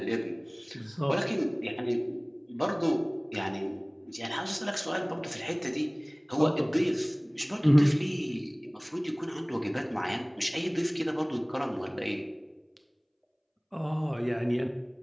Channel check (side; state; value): both; identical; correlation 1.00